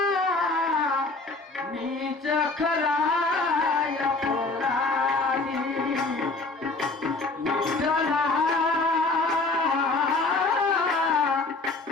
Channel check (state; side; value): quieter; right; 3.5 dB